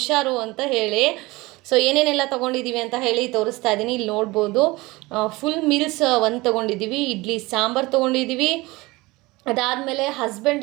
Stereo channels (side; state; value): left; quieter; 21.7 dB